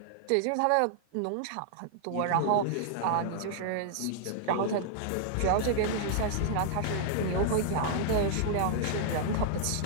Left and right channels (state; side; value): different; both; correlation -0.01